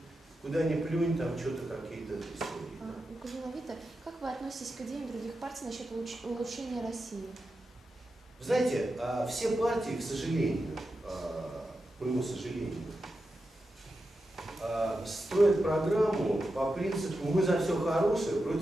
куда ни плюнь, там что-то какие-то истории. Да? Как вы относитесь к идеям других партий насчет улучшения России? Вы знаете, все партии, к сожалению, к моему сожалению, строят программу по принципу «мы за все хорошее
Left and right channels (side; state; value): both; normal; correlation 0.89